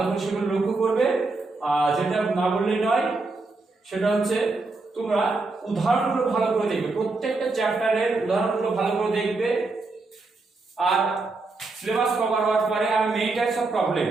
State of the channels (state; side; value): quieter; left; 3.5 dB